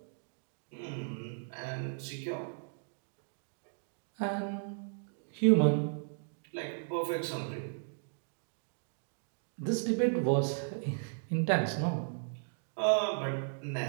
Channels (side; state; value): left; silent; digital silence